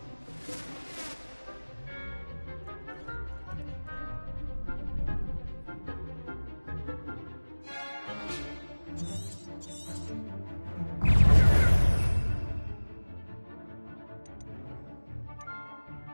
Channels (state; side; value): inverted; both; correlation -1.00